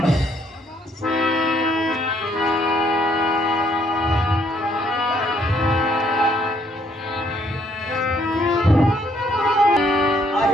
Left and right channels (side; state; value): both; normal; correlation 0.67